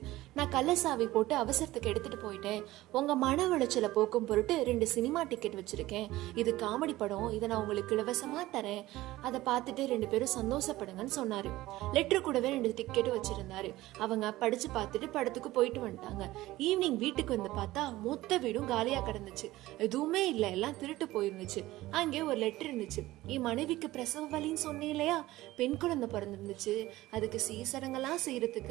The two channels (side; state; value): left; quieter; 17.1 dB